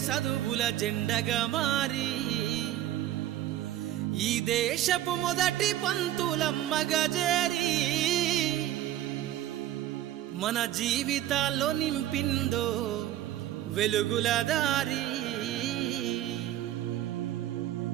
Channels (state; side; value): quieter; left; 13.2 dB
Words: చదువుల జెండగా మారి ఈ దేశపు మొదటి పంతులమ్మగా చేరి మన జీవితాల్లో నింపిందో వెలుగుల దారి